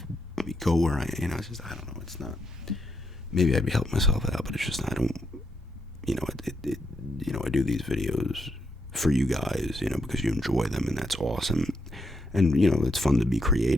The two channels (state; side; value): normal; both; correlation 0.79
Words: go where it's just, I don't know, it's not, maybe I'd be helping myself out, but it's just, I don't, I do these videos for you guys, because you enjoy them, and that's awesome, and, it's fun to be